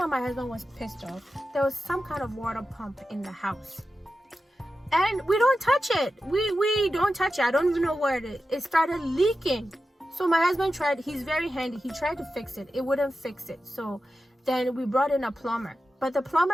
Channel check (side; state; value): both; normal; correlation 0.92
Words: my husband was pissed off, there was some kind of water pump in the house. And we don't touch it. We don't touch it. I don't even know where it is. It started leaking. So my husband tried, he's very handy. He tried to fix it. It wouldn't fix it. So then we brought in a plumber. But the